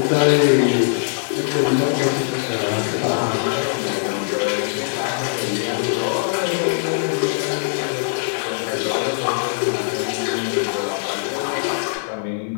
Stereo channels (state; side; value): silent; right; 65 dB below the other